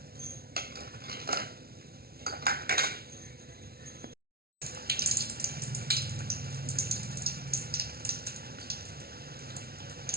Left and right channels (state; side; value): late; left; 0.44 ms